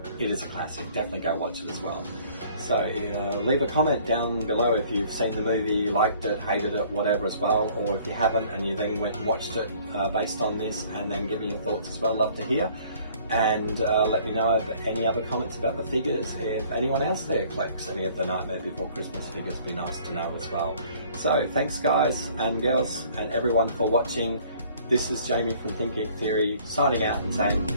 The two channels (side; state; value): both; inverted; correlation -0.56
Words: is a classic. Definitely go watch it as well. So leave a comment down below if you've seen the movie, liked it, hated it, whatever as well, or if you haven't and you then went and watched it based on this, and then give me your thoughts as well. Love to hear. And let me know if any other comments about the figures. If anyone else there collects any of the Nightmare Before Christmas figures, it'd be nice to know as well. So thanks guys and girls and everyone for watching. This is Jamie from Think Geek Theory signing out and saying